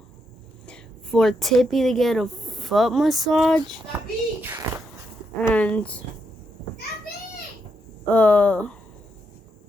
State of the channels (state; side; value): normal; both; correlation 0.80